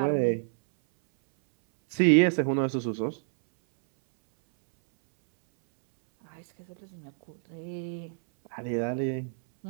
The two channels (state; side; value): silent; left; 60 dB below the other